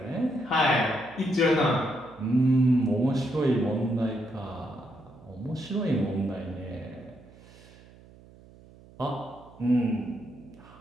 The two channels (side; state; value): right; noise; hum, 23 dB below the sound